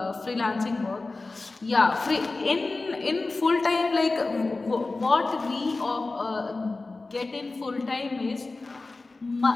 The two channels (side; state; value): right; quieter; 3.4 dB